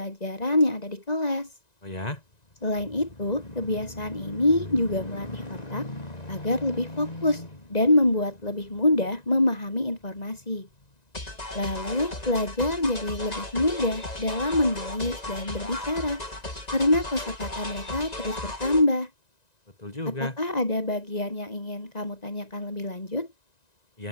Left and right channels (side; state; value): right; late; 1.9 ms